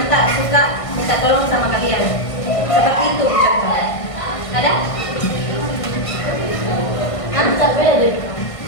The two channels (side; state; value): right; late; 1.5 ms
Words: tak suka minta tolong sama kalian. Seperti itu contoh. Ada?